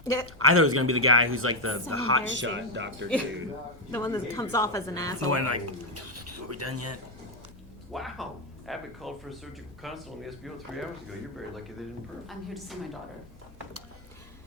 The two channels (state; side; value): normal; both; correlation 0.05